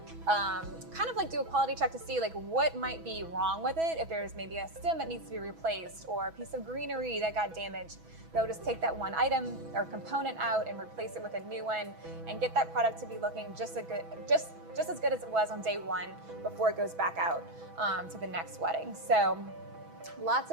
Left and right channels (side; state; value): left; late; 6.1 ms